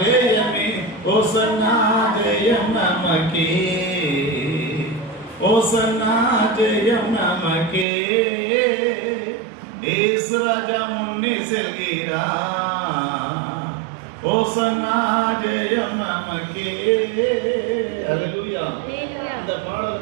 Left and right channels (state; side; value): drops out; left; at 7.9 s